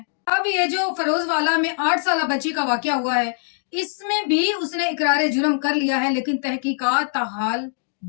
अब ये जो फरोज वाला में 8 साला बच्ची का वाकया हुआ है, इसमें भी उसने इकरार जुर्म कर लिया है, लेकिन तहकीकात ताहाल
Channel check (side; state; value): right; silent; 64 dB below the other